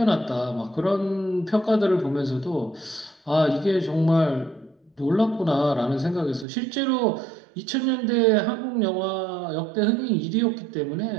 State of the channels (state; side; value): drops out; left; at 6.5 s